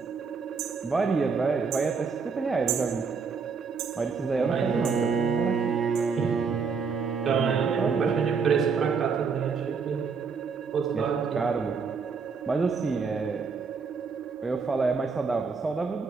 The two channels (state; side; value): quieter; left; 5.4 dB